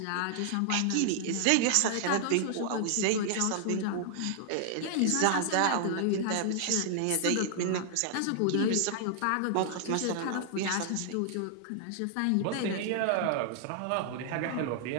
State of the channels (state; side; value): different; both; correlation 0.00